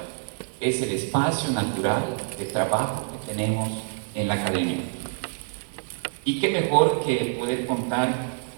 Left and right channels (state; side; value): silent; left; digital silence